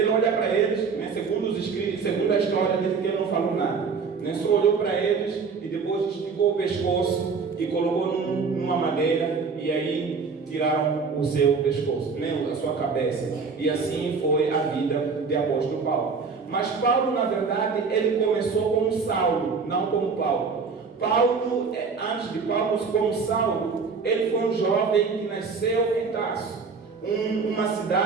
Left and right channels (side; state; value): left; quieter; 5.1 dB